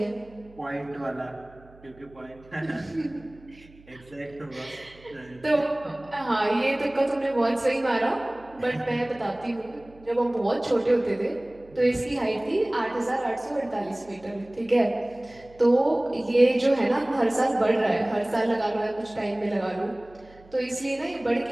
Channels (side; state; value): right; noise; hum, 25 dB below the sound